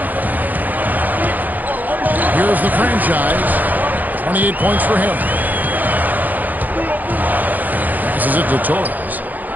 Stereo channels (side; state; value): left; late; 0.083 ms